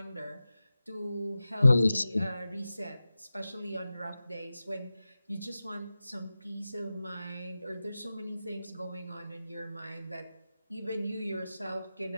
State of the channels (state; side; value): inverted; both; correlation -0.94